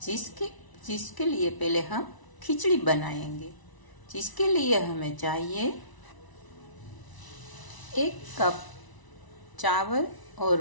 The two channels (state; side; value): late; right; 1.0 ms